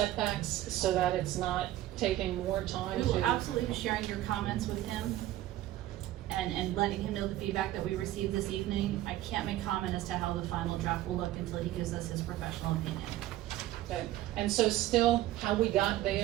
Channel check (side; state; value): left; quieter; 14.7 dB